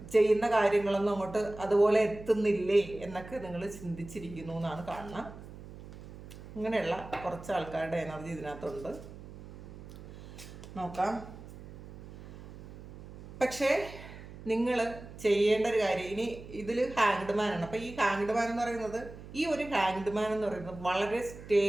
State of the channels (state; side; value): noise; right; hum, 15 dB below the sound